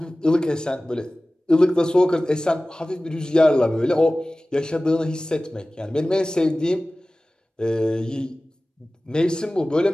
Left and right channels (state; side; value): normal; both; correlation 0.97